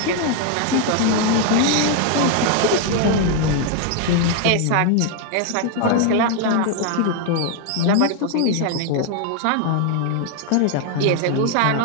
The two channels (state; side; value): different; both; correlation 0.00